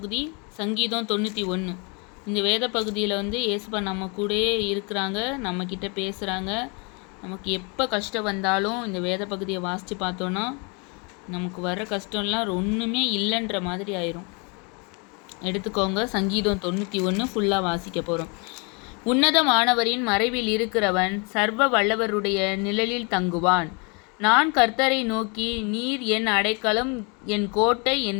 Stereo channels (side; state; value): right; quieter; 32.8 dB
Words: சங்கீதம் 91. இந்த வேத பகுதியில் ஏசுப்பா நம்ம கூடயே இருக்கிறாங்க, நம்மக்கிட்ட பேசுகிறாங்க. நமக்கு எப்போ கஷ்டம் வந்தாலும் இந்த வேத பகுதியை வாசித்து பார்த்தோன்னா நமக்கு வர கஷ்டம்லாம் ஒன்றுமே இல்லைன்ற மாதிரி ஆயிரும். எடுத்துக்கோங்க, சங்கீதம் 91 ஃபுல்லாக வாசிக்க போகிறோம். உன்னதமானவரின் மறைவில் இருக்கிறவன் சர்வ வல்லவருடைய நிழலில் தங்குவான். நான் கர்த்தரை நோக்கி, நீர் என் அடைக்கலம், என் கோட்டை,